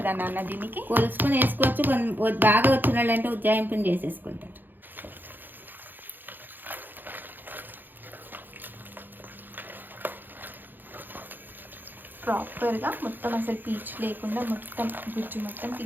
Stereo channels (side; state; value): left; late; 0.090 ms